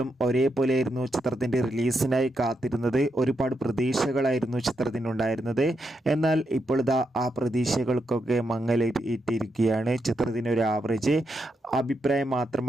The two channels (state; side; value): normal; both; correlation 0.83